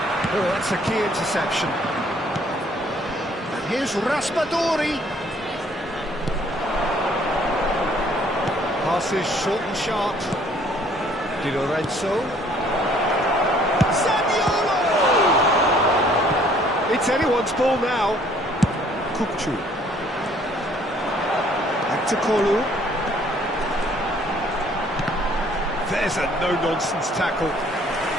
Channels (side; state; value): both; normal; correlation 0.60